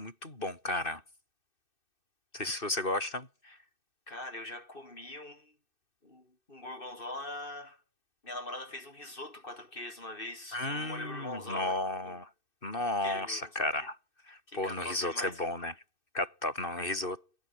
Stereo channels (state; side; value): late; right; 2.6 ms